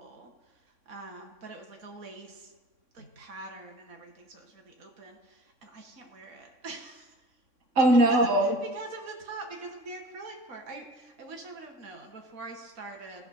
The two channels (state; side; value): late; left; 3.6 ms